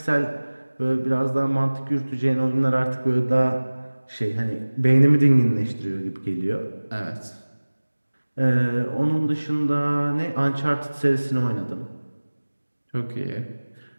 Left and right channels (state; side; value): inverted; both; correlation -1.00